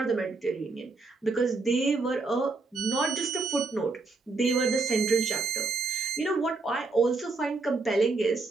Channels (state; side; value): quieter; left; 3.8 dB